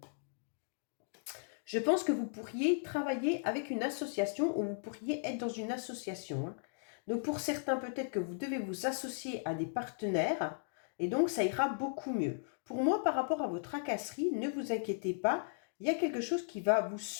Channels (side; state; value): right; silent; digital silence